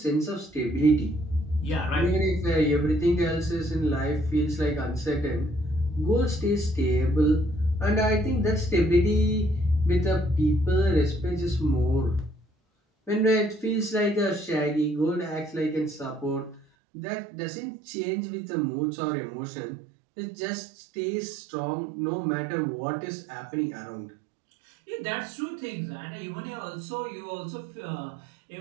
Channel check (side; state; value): left; drops out; at 16.7 s